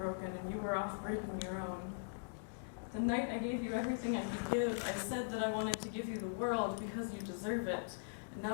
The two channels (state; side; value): silent; right; digital silence